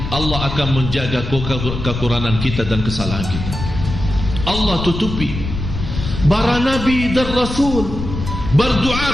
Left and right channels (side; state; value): left; noise; rumble, 6 dB below the sound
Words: Allah akan menjaga kekurangan kita dan kesalahan kita. Allah tutupi. Para nabi dan rasul